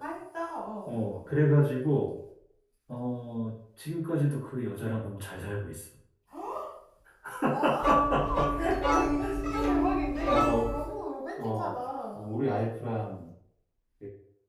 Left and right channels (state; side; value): identical; both; correlation 1.00